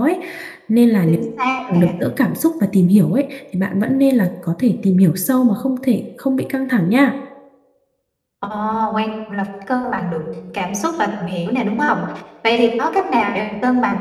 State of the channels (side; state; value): both; identical; correlation 1.00